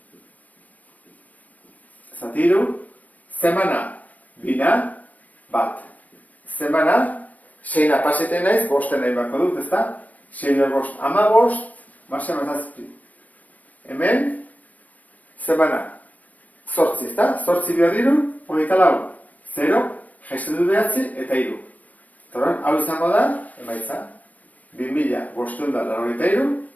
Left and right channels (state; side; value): late; right; 0.073 ms